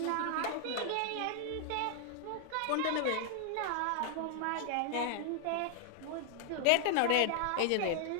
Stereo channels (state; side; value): different; both; correlation 0.00